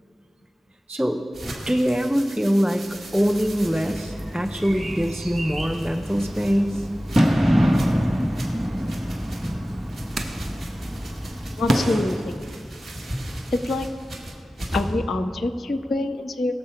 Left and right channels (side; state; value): both; normal; correlation 0.96